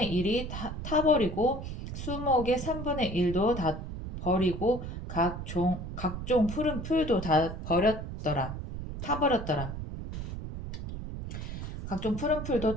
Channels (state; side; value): noise; right; rumble, 7 dB below the sound